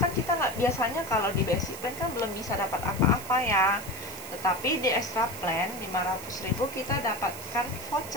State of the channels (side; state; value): right; noise; hiss, 13 dB below the sound